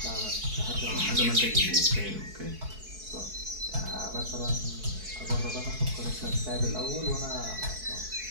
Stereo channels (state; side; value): late; left; 4.6 ms